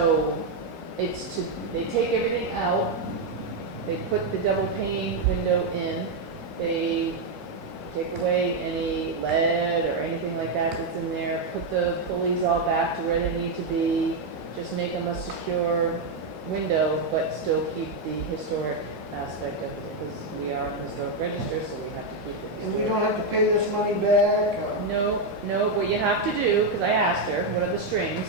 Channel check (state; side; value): quieter; left; 3.2 dB